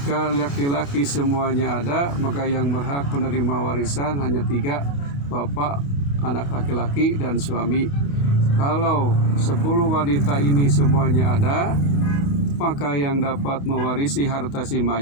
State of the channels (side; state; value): right; late; 28 ms